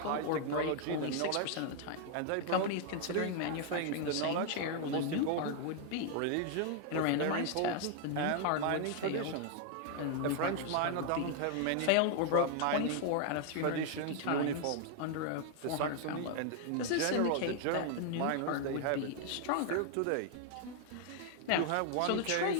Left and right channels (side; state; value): both; different; correlation 0.00